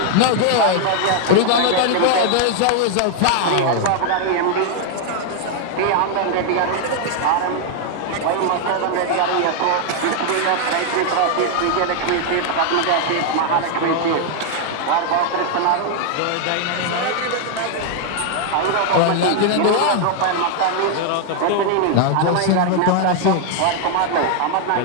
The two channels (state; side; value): different; both; correlation 0.00